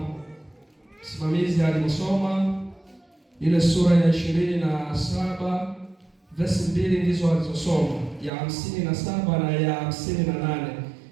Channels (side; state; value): left; drops out; at 8.3 s